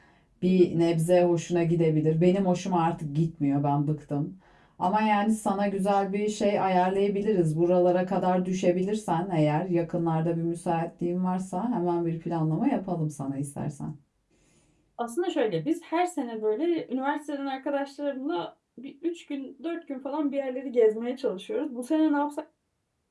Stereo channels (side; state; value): both; identical; correlation 1.00